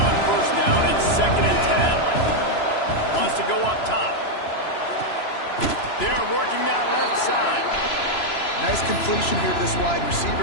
first down. It's 2nd and 10. Wants to go up top. They're working that left side. Nice completion here to this wide receiver.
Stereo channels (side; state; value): right; late; 3.0 ms